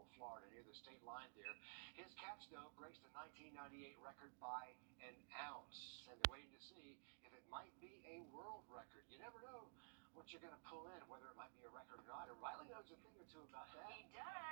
Florida, near the state line there. His catch, though, breaks the 1998 record by an ounce. And they're waiting to see if it might be a world record. You never know what you're going to pull in, whether it might be a record or not. And Riley knows a thing or two about that. He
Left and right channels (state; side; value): silent; left; digital silence